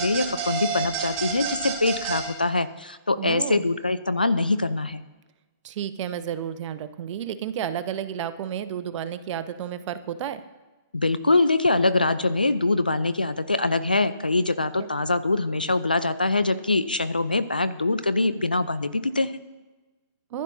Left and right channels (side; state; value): both; inverted; correlation -0.75